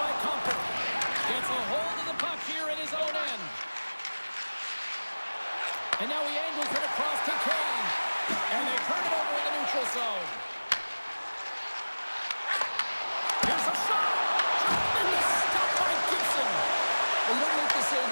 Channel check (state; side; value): inverted; both; correlation -1.00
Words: Comper. Gets a hold of the puck here in his own end. And now he angles it across to Kane. And they turn it over in the neutral zone. Here's a shot. And it's stopped by Gibson. Well, you don't make the save